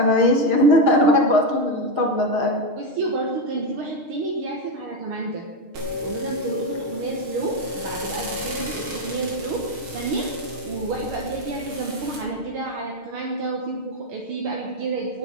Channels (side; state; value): left; late; 6.5 ms